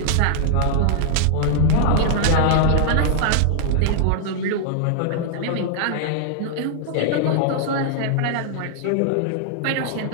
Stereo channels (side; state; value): both; different; correlation -0.01